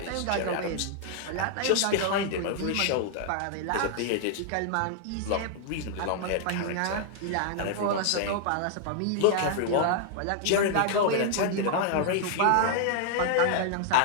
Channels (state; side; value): different; both; correlation -0.01